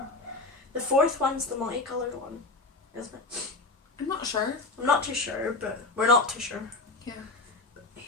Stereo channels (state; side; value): quieter; right; 3.5 dB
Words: The 4th one's the multicolored one, isn't it? I'm not sure. I'm not too sure, but we're not too sure. Yeah.